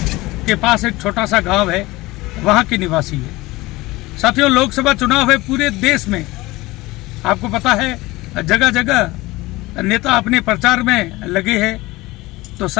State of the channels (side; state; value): right; quieter; 20.2 dB